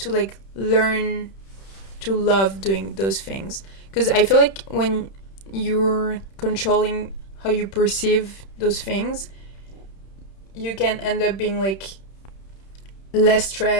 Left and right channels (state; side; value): late; right; 31 ms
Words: like learn to love doing those things, because I feel like when you're controlling how you perceive those things, you can end up being like less